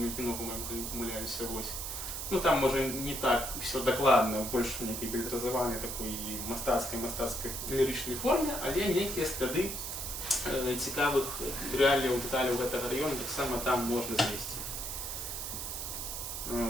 кино», по-моему, не помыляюсь, вось. Ну, там, може, не так все докладно, больше некий билетразованный такой мастацкой лиричной форме, але некие склады цікавых реаліяў, деталяў гэтага района таксама там можна знайсці.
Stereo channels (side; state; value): right; noise; hiss, 5 dB below the sound